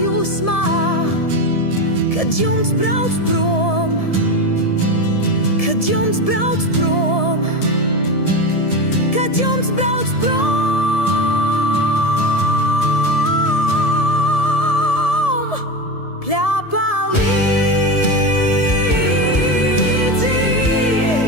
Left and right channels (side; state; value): right; late; 1.7 ms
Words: kad jums brauc prom, kad jums brauc prom, kad jums brauc prom. Pļāpā līdzi